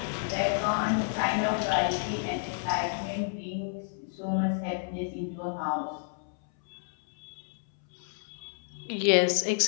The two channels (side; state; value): right; silent; 58 dB below the other